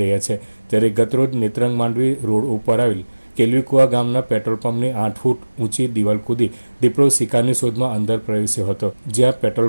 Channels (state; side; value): inverted; both; correlation -1.00